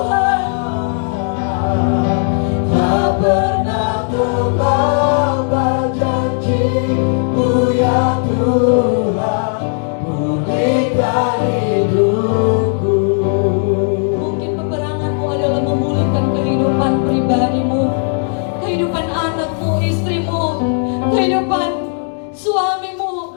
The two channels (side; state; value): right; silent; 58 dB below the other